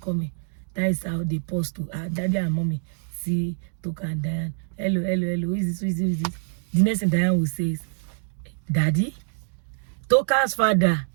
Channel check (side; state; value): left; silent; digital silence